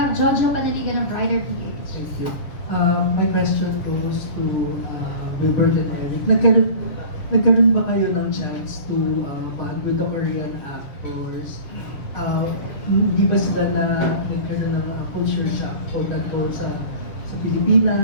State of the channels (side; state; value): right; late; 6.9 ms